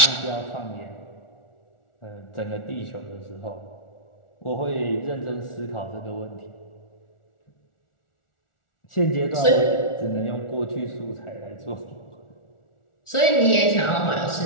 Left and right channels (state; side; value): late; right; 1.4 ms